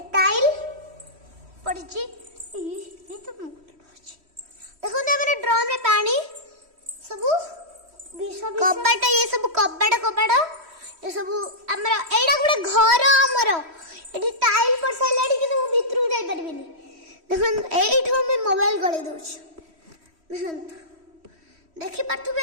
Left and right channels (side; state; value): left; late; 3.1 ms